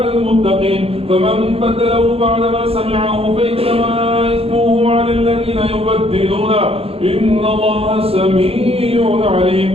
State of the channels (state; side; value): late; left; 0.28 ms